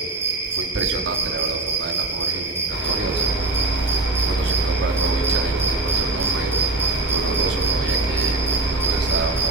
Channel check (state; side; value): quieter; left; 3.1 dB